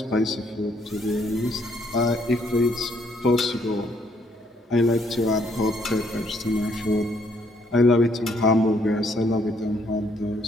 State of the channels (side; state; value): both; normal; correlation 0.68